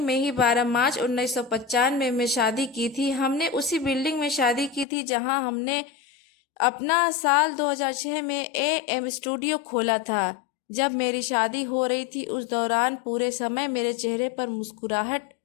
ही 12 मार्च 1995 में शादी की थी। हमने उसी बिल्डिंग में शादी की थी जहां हमने अपना साल 2006 में ए.एम. स्टूडियो खोला था। जब मेरी शादी हो रही थी, उस दौरान पूरे समय मेरे चेहरे पर मुस्कुराहट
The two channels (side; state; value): right; drops out; at 4.9 s